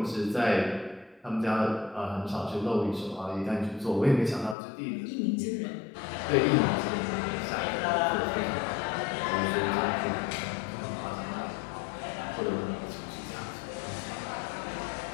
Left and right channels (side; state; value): right; drops out; at 4.5 s